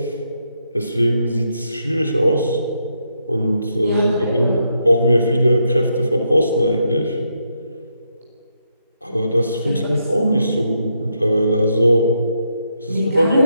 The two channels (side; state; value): both; inverted; correlation -0.79